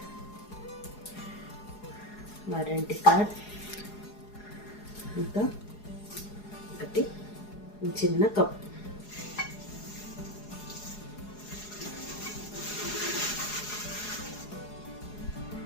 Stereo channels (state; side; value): late; right; 4.8 ms